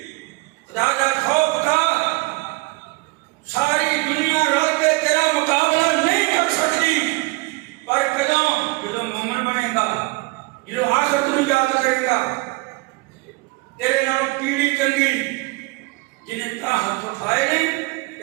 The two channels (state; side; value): quieter; left; 25.3 dB